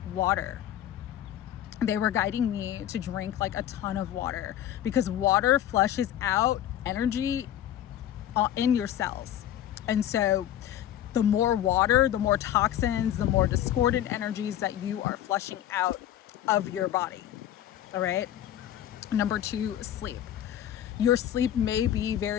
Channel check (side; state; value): right; quieter; 11.5 dB